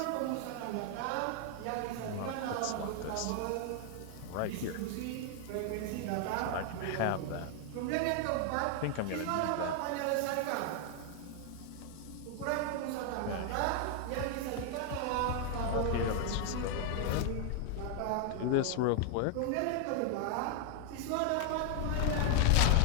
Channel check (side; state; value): both; different; correlation 0.00